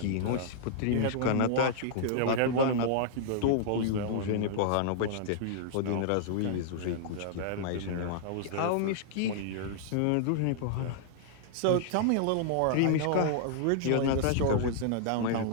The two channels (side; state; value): both; different; correlation -0.01